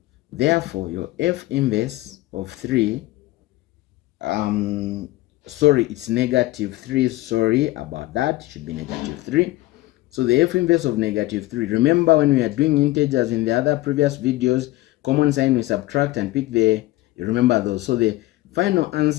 Therefore, your f inverse of 3, sorry, it's negative 3. Sorry about that. It should be negative 3. So the f inverse of negative 3. Remember when we are doing integers in the other previous videos, common sign we subtract and pick you remember those. So the final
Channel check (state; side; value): quieter; right; 18.0 dB